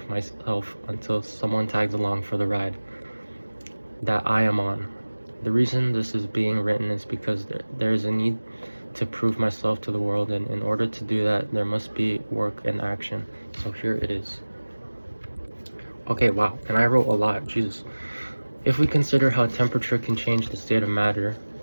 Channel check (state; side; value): inverted; both; correlation -1.00